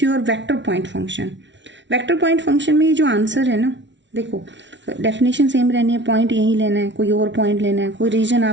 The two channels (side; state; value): left; late; 0.53 ms